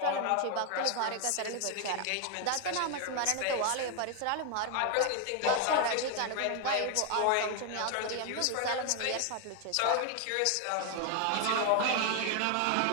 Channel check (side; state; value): both; different; correlation 0.01